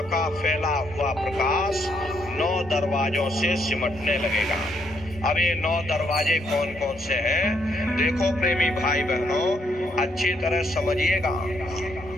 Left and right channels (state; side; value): normal; both; correlation 0.74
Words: का फैला हुआ प्रकाश 9 दरवाजों से सिमटने लगेगा। अब ये 9 दरवाजे कौन कौन से हैं? देखो प्रेमी भाई बहनों, अच्छी तरह समझिएगा।